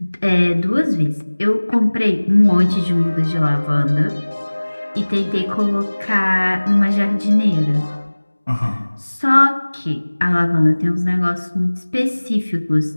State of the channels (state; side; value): inverted; both; correlation -1.00